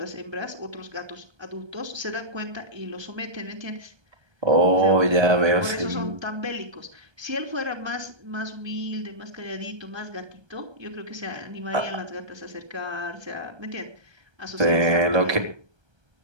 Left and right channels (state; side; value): late; left; 1.3 ms